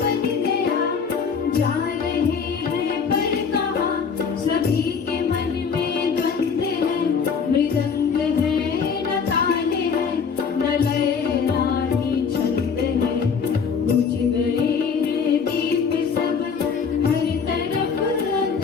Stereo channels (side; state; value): right; quieter; 6.0 dB